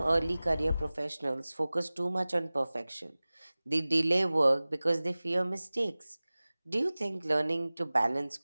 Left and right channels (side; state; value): both; inverted; correlation -0.99